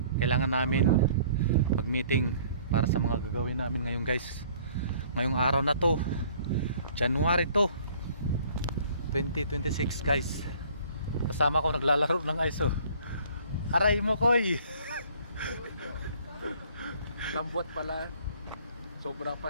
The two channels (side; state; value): both; inverted; correlation -0.55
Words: namin mag-meeting para sa mga gagawin namin ngayon guys. Ngayong araw na to, January to 2026 guys. Kasama ko naglalaro ng ice oh. Aray mo koy. Lambot pala. Sobra